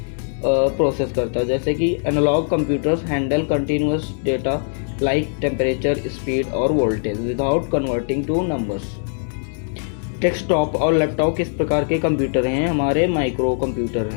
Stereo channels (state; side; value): silent; right; 64 dB below the other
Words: प्रोसेस करता है। जैसे कि analog computers handle continuous data like temperature, speed और voltage without converting to numbers. Desktop और लैपटॉप किस प्रकार के कंप्यूटर हैं, हमारे माइक्रो कंप्यूटर